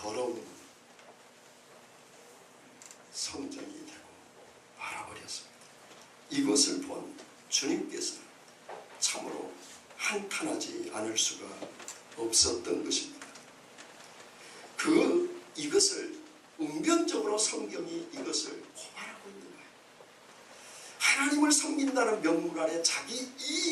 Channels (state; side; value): identical; both; correlation 1.00